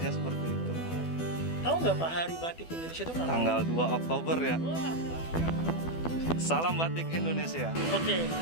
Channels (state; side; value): late; right; 12 ms